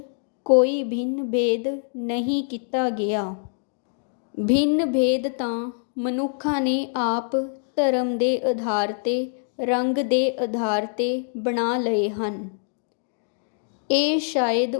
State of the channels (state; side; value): silent; right; digital silence